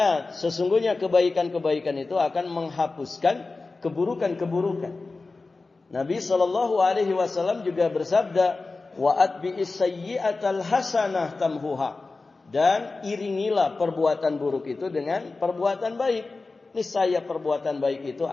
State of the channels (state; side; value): quieter; right; 3.7 dB